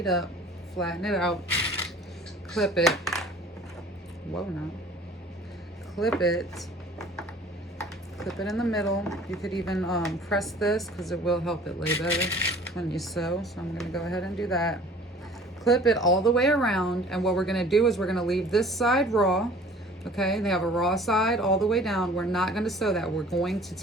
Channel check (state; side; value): normal; both; correlation 0.49